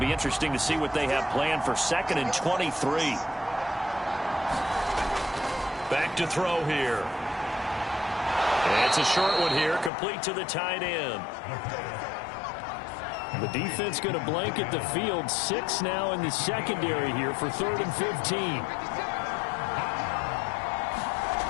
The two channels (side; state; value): right; drops out; at 9.9 s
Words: interesting to see what they have planned for 2nd and 23. Back to throw here. It's a short one here, complete to the tight end. The defense going to blanket the field. 6 now in the secondary here for 3rd and 15.